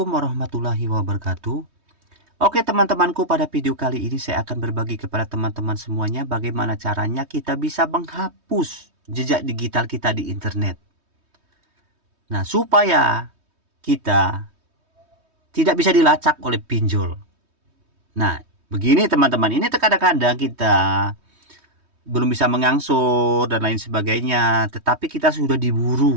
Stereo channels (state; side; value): late; left; 3.2 ms